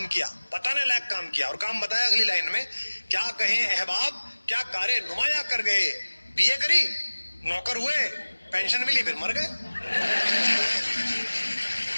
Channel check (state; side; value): inverted; both; correlation -1.00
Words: किया, बताने लायक काम किया। और काम बताया अगली लाइन में, क्या कहें अहबाब, क्या कारे नुमाया कर गए, बीए करी, नौकर हुए, पेंशन मिली, फिर मर गए।